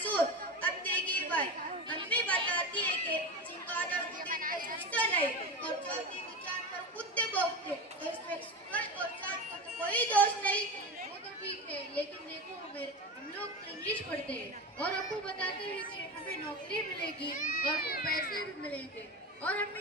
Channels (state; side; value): normal; both; correlation 0.23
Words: अब देखिए भाई, अम्मी बताती है कि चिंगारा को दिन में सोचते नहीं और चौथी की चांद पर कुत्ते भौंकते, तो इसमें सूरज और चांद का तो कोई दोष नहीं। वो तो ठीक है, लेकिन देखो हम लोग तो इंग्लिश पढ़ते हैं और आपको बताते हैं कि हमें नौकरी मिलेगी और पैसे भी मिलेंगे, और